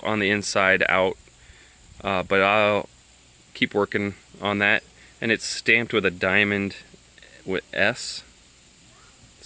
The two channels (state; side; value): identical; both; correlation 1.00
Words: on the inside out, but I'll keep working on that. And it's stamped with a diamond with S.